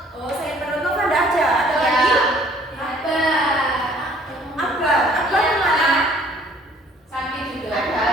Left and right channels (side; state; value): both; normal; correlation 0.56